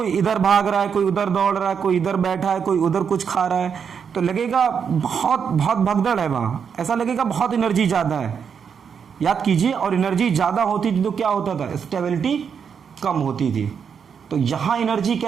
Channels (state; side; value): quieter; left; 6.9 dB